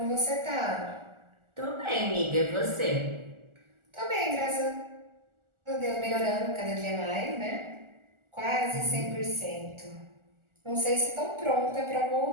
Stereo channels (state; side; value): late; left; 1.4 ms